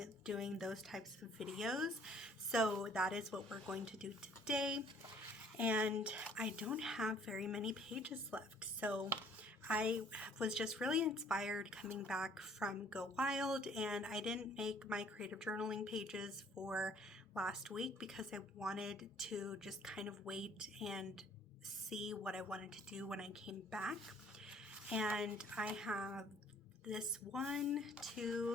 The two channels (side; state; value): both; normal; correlation 0.58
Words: doing those types of videos. So that is what we're going to do today. And I don't have very many pages left. So I was just really inspired coming back from Go Wild, and I didn't make my creative journaling pages for last week because I wanted to just kind of wait and see what I wanted to do when I came back. And I have this 1,